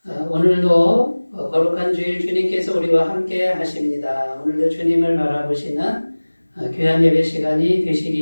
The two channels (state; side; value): inverted; both; correlation -1.00